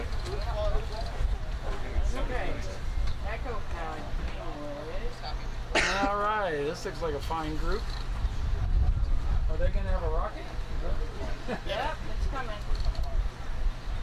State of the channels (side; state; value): both; identical; correlation 1.00